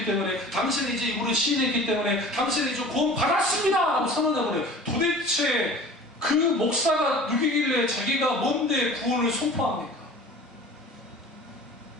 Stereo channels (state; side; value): normal; both; correlation 0.43